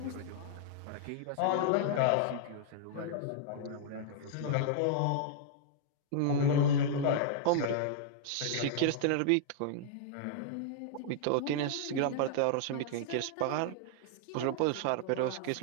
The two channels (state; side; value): different; both; correlation -0.01